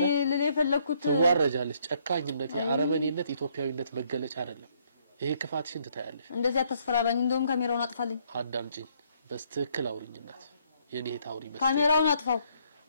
ለሌ ፈለኩት ትዋረጃለሽ ጨካኝነት የአረመኔነት ኢትዮጵያዊነት መገለጫ አይደለም ይሄ ክፋትሽን ትታያለሽ እንደዚህ አትስፈራራኝ እንደውም ካሜራውን አጥፋልኝ አዳምጪኝ በስትክክል አውሪኝናት የኔ ታውሪ በስ ካሜራውን አጥፋው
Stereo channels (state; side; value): inverted; both; correlation -0.69